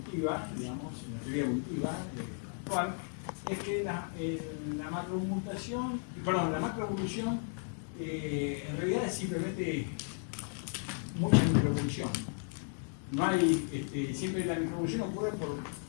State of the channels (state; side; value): silent; right; 55 dB below the other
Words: digamos, en la teoría evolutiva actual, es que la macromutación, perdón, la macroevolución en realidad es simplemente mucha microevolución. No hay, siempre la microevolución ocurre por